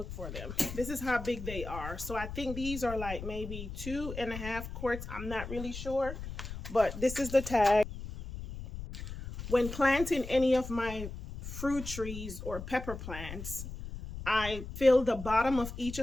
for them. This is how big they are. So I think these are like maybe 2.5 quarts. I'm not really sure, but this is the tag. When planting any of my fruit trees or pepper plants, I fill the bottom of each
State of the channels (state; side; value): noise; left; rumble, 9 dB below the sound